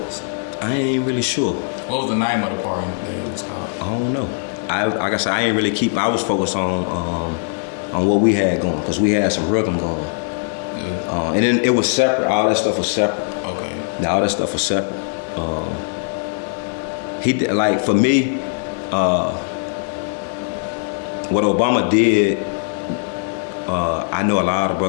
I ain't really sure. What was the name of the pardon that it was called? I don't know. Like I said, I ain't really keep. I was focused on what we had going, because we had some rhythm going, Yeah. and then it was separate. All that stuff was separate. Okay. Now all that stuff was separate. He did, like, for me, what Obama did I know a lot of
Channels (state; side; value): silent; right; digital silence